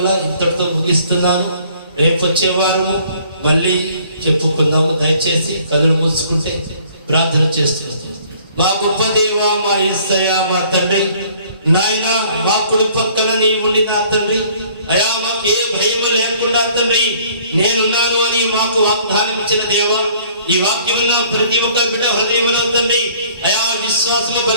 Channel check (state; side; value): inverted; both; correlation -0.57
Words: ఇంతటితో ముగిస్తున్నాను. రేపు వచ్చే వారము మళ్ళీ చెప్పుకుందాము. దయచేసి కనులు మూసుకుంటే ప్రార్థన చేస్తున్నాం. మా గొప్ప దేవా, మా యేసయ్య, మా తండ్రి, నాయన మా కుడి పక్కన నీ ఉండి నా తండ్రి, అయా మాకు ఏ భయం లేకుండా తండ్రి నేనున్నాను అని మాకు వాగ్దానం ఇచ్చిన దేవా, ఈ వాక్యమున్న ప్రతి ఒక్క బిడ్డ హృదయంలో తండ్రి అయా విశ్వాసము